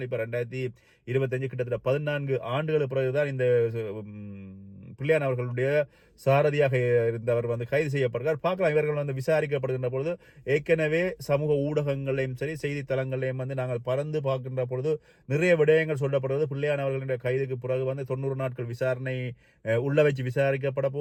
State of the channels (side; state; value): both; identical; correlation 1.00